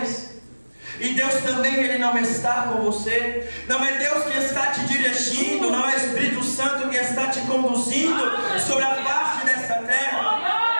E Deus também Ele não está com você? Não é Deus que está te dirigindo? Não é o Espírito Santo que está te conduzindo sobre a face desta terra?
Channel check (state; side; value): inverted; both; correlation -1.00